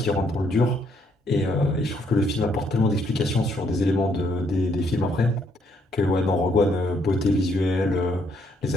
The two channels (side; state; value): both; normal; correlation 0.71